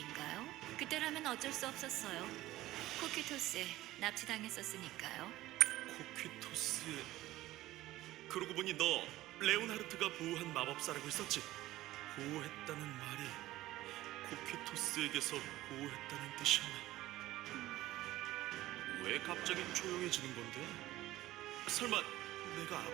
그때라면 어쩔 수 없었어요. 코키토스에 납치당했었으니까요. 코퀴토스의... 그러고 보니 너 레오나르트가 보호한 마법사라고 했었지? 보호했다는 말이 코퀴토스에게서 보호했다는 뜻이었나? 왜 갑자기 조용해지는 건데? 설마 내가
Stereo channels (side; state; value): left; quieter; 16.2 dB